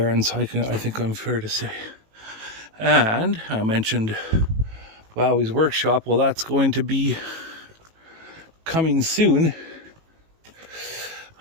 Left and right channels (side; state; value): left; late; 18 ms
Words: I think I'm fair to say. And I mentioned Wowie's workshop. Well, that's going to be coming soon